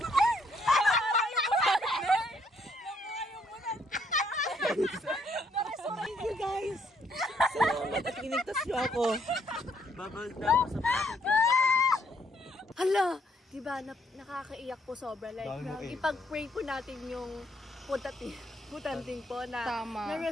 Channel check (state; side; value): normal; both; correlation 0.70